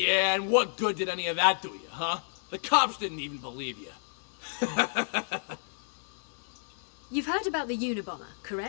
and what good did any of that do you, huh? The cops didn't even believe you. You've heard about the Unabomber,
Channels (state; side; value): silent; right; digital silence